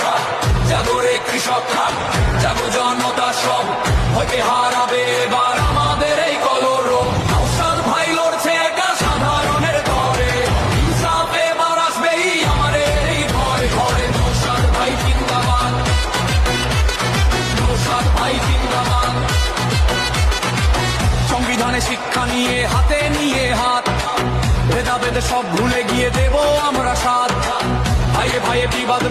জাগরে কৃষকরা, জাগো জনতা সব, ভয়কে হারাবে এবার আমাদের এই কলরব। নওশাদ ভাই লড়ছে একা সাধারণের তরে, ইনসাফ এবার আসবেই আমাদের এই ঘরে ঘরে। নওশাদ ভাই জিন্দাবাদ, নওশাদ ভাই জিন্দাবাদ। সংবিধানে শিক্ষা নিয়ে হাতে নিয়ে হাত, ভেদাভেদ সব ভুলে গিয়ে দেব আমরা সাথ। ভাইয়ে ভাইয়ে বিবাদ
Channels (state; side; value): identical; both; correlation 1.00